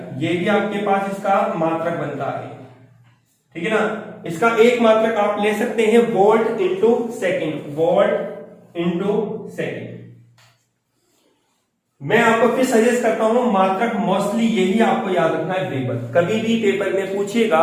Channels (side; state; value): both; identical; correlation 1.00